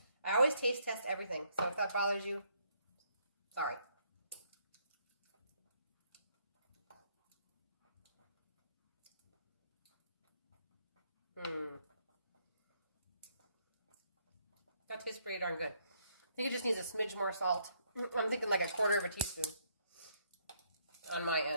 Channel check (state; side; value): inverted; both; correlation -0.70